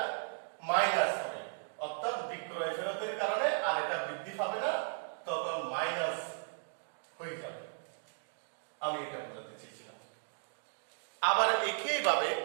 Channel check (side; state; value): left; silent; digital silence